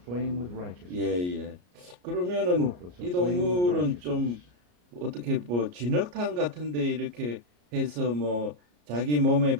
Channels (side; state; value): left; late; 34 ms